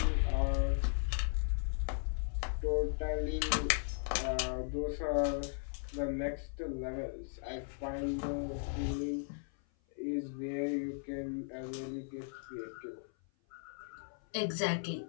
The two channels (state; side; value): silent; right; 53 dB below the other